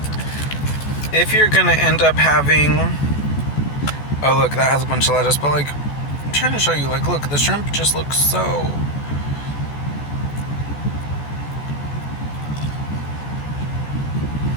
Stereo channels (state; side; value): late; right; 14 ms